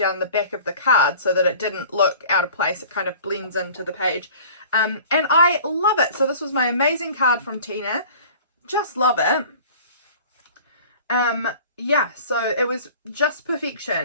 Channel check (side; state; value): both; inverted; correlation -0.44